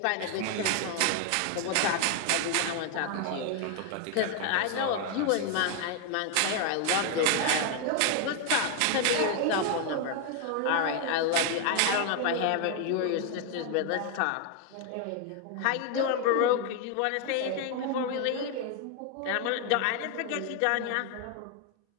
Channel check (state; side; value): different; both; correlation 0.01